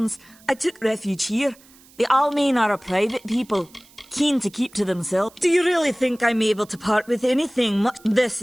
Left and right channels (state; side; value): noise; right; hiss, 26 dB below the sound